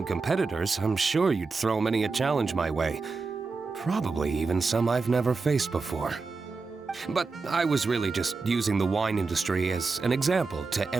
competitors, I'm sure you'd throw many a challenge my way. Probably even some I've never faced before. But I was really just using the wine industry as an example to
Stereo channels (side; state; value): left; quieter; 4.2 dB